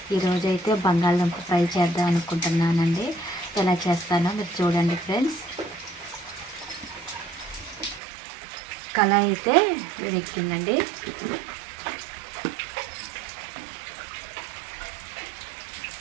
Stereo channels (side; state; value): left; drops out; at 8.0 s